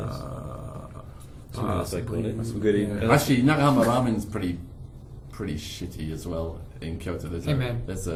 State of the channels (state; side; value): identical; both; correlation 1.00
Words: that's what they call it. That's some good eating. Yeah. Actually, Nagahama ramen's pretty shitty as well in Kyoto. Hey, man. There's